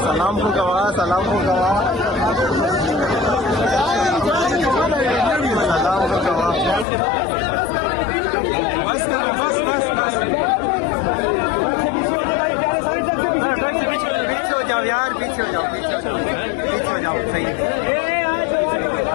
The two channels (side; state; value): right; drops out; at 6.9 s